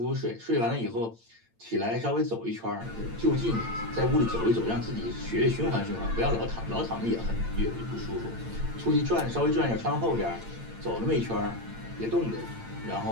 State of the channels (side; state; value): left; late; 8.8 ms